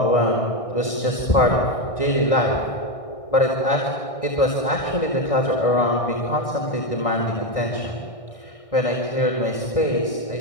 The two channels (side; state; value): right; late; 1.6 ms